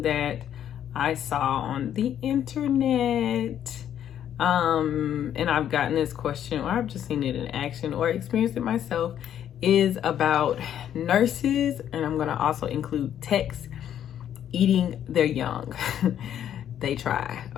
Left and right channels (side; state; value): right; quieter; 10.2 dB